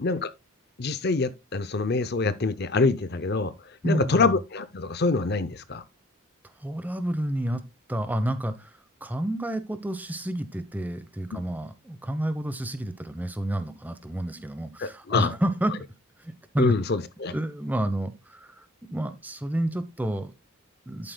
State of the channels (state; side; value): normal; both; correlation 0.56